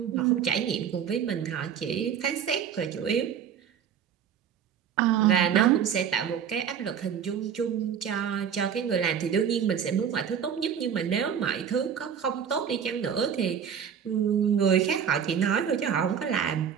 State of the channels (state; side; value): quieter; left; 8.0 dB